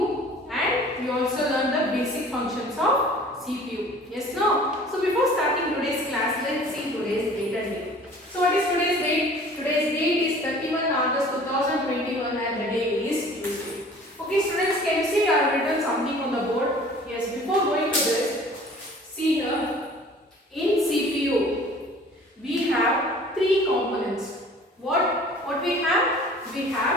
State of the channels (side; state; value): both; normal; correlation 0.48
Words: and we also learned the basic functions of CPU. Yes, no? So before starting today's class, let's see today's date and date. So what is today's date? Today's date is 31 August 2021 and the day is Tuesday. Okay students, can you see I have written something on the board? Yes, before going to this, see here, in CPU, we have three components. What we have? We